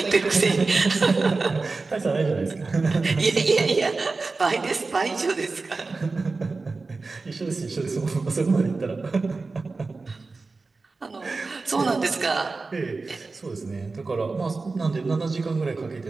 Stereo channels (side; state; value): left; quieter; 3.9 dB